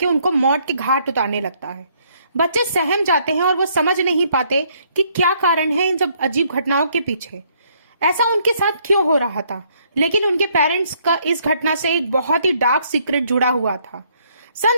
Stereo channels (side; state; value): both; inverted; correlation -0.68